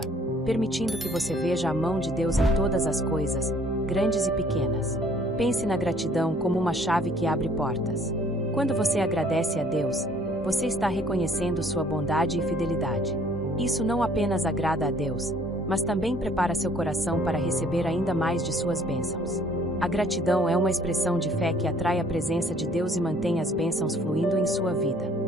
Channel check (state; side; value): normal; both; correlation 0.58